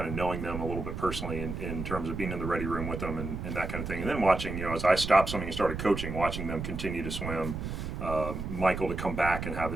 of knowing them a little bit personally in terms of being in the ready room with them and that kind of thing. And then watching, as I stopped swimming and started coaching, watching them continue to swim, Michael to come back and have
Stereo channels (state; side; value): noise; right; rumble, 5 dB below the sound